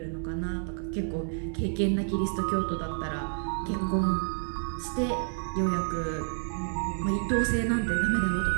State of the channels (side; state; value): left; silent; 58 dB below the other